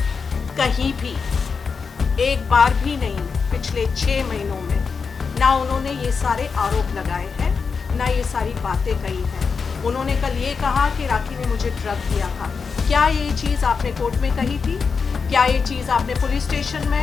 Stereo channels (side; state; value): right; quieter; 5.4 dB